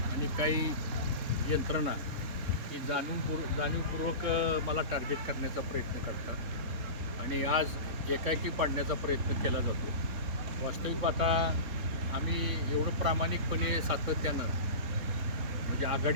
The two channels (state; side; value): late; left; 3.9 ms